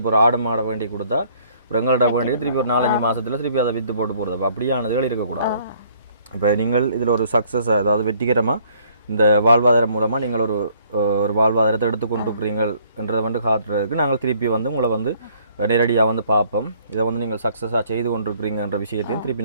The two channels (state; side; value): inverted; both; correlation -0.62